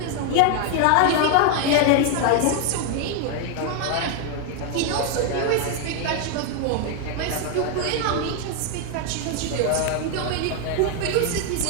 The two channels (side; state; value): both; different; correlation 0.01